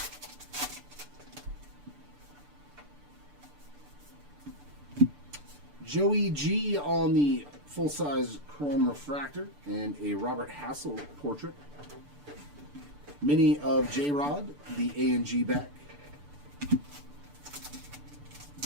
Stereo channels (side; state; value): left; late; 6.9 ms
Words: Joey G on the full-size chrome refractor and a Robert Hassel portrait. Mini of J-Rod, the A&G back.